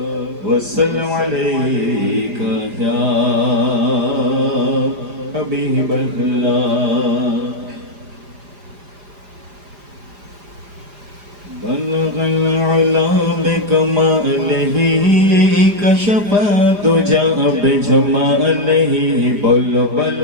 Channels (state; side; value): late; left; 5.0 ms